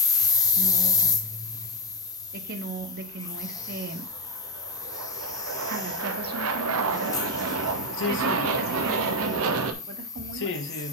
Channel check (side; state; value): both; normal; correlation 0.08